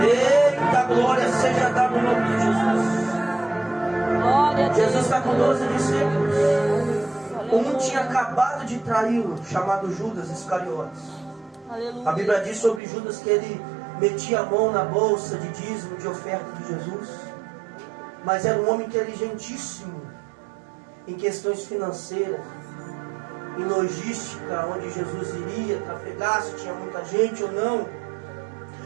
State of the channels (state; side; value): drops out; left; at 12.8 s